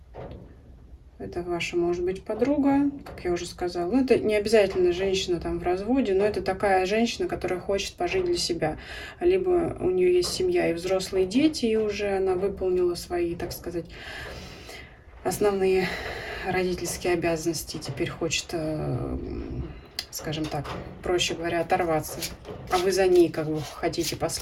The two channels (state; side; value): identical; both; correlation 1.00